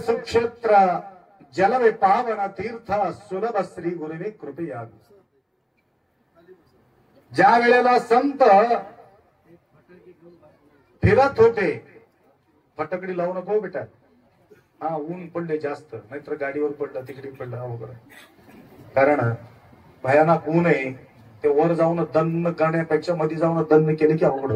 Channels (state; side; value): identical; both; correlation 1.00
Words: जलवे पावन तीर्थ सुलभ श्री गुरुवे कृपया. ज्या वेळेला संत फिरत होते, फटकडी लावू नको बेटा, हा ऊन पडले जास्त, नाहीतर गाडीवर पडलं तिकडे पडलं अवघड. कारण भयानक ऊन आहे, ते वर जाऊन दन्न करण्यापेक्षा मध्ये जाऊन दन्न केले की अवघड